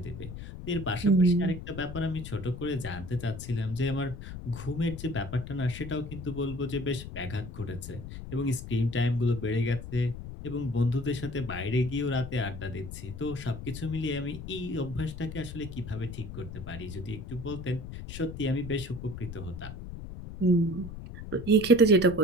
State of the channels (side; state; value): left; noise; rumble, 10 dB below the sound